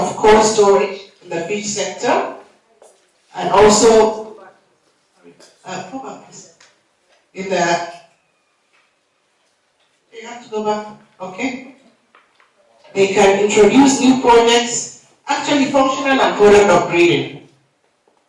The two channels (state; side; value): identical; both; correlation 1.00